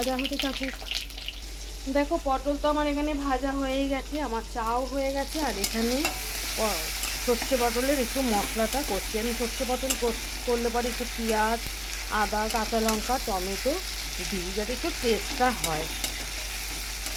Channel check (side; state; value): both; identical; correlation 1.00